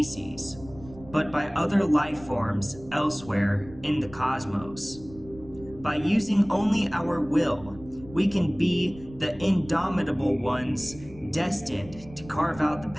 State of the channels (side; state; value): right; noise; rumble, 19 dB below the sound